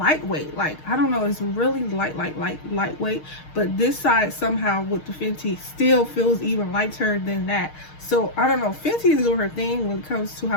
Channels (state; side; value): late; right; 6.5 ms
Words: Like, I don't know, it's really lightweight, but this side somehow with the Fenty still feels even lighter than that. So I don't know, Fenty is doing her thing when it comes to